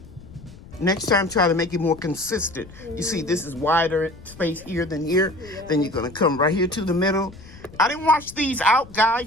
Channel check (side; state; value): left; noise; rumble, 19 dB below the sound